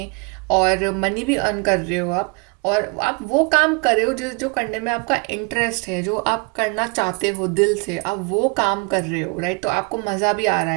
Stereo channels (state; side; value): quieter; left; 30.6 dB